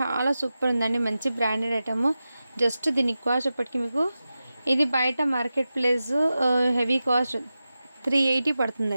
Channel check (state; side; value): inverted; both; correlation -0.93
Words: సూపర్ ఉందండి, మంచి బ్రాండెడ్ ఐటమ్. జస్ట్ దీనికి కాస్ట్ ఇప్పటికి మీకు ఇది బయట మార్కెట్ ప్లేస్ హెవీ కాస్ట్ 380